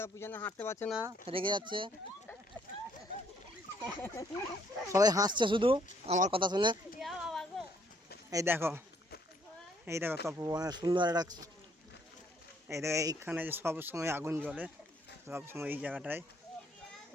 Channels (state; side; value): normal; both; correlation 0.67